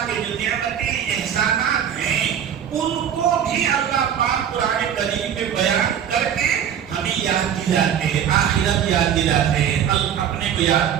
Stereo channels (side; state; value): left; quieter; 9.0 dB